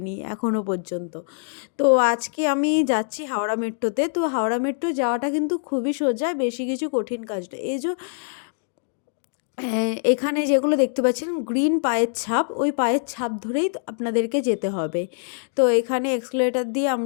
এখনও পর্যন্ত। তো আজকে আমি যাচ্ছি হাওড়া মেট্রোতে। তো হাওড়া মেট্রো যাওয়াটা কিন্তু খুবই সোজা, বেশি কিছু কঠিন কাজ না। এই যে এখানে যেগুলো দেখতে পাচ্ছেন গ্রিন পায়ের ছাপ, ওই পায়ের ছাপ ধরেই আপনাদেরকে যেতে হবে। তো এখানে এক্সেলেটার দিয়ে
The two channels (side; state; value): right; silent; digital silence